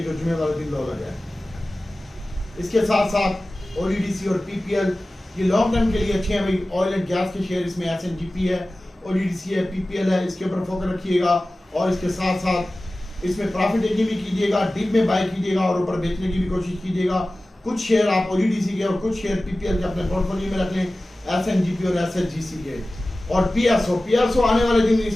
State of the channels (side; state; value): both; normal; correlation 0.96